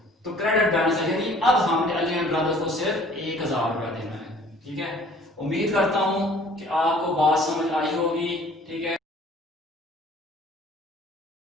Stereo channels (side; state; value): both; normal; correlation 0.53